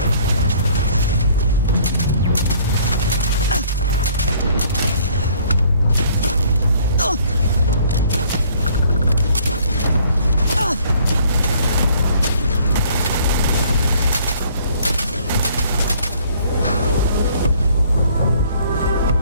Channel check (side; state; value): both; inverted; correlation -0.58